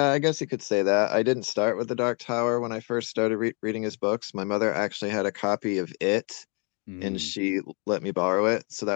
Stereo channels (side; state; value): right; quieter; 36.0 dB